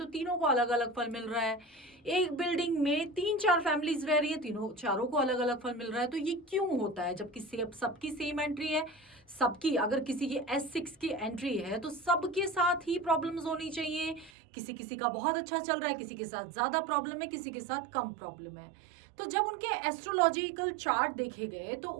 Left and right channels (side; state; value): left; drops out; at 14.3 s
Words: तीनों को अलग अलग फल मिल रहा है। एक बिल्डिंग में 3-4 फैमिलीज रह रही है, तीनों चारों को अलग अलग फल मिल रहा है। तो ये क्यों होता है, जबकि सबकी सेम एंट्री है, सबकी अगर किसी की S6 की एंट्री है तो सबके साथ ही प्रॉब्लम्स होनी चाहिए। किसी किसी का बहुत अच्छा चल रहा है, किसी के साथ ज्यादा प्रॉब्लम है, किसी के साथ कम प्रॉब्लम है। तो जब उनके एस्ट्रोलॉजिकल चार्ट देखे गए तो